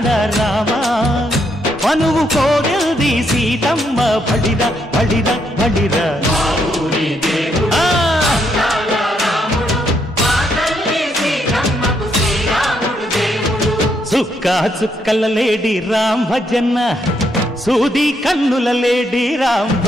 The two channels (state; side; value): normal; both; correlation 0.76